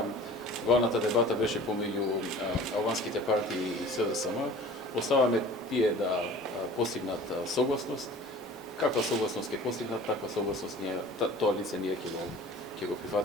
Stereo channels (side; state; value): both; normal; correlation 0.43